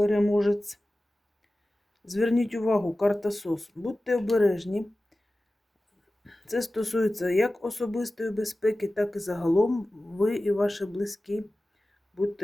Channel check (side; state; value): both; normal; correlation 0.96